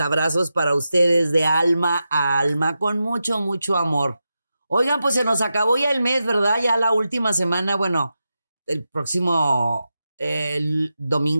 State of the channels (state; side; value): inverted; both; correlation -0.90